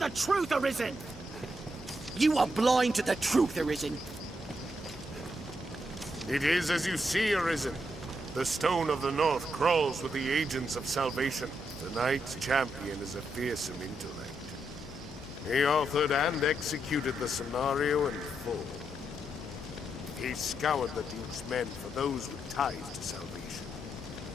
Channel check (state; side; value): normal; both; correlation 0.81